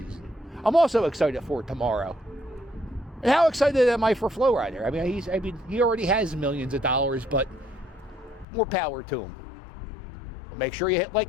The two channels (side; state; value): right; drops out; at 8.5 s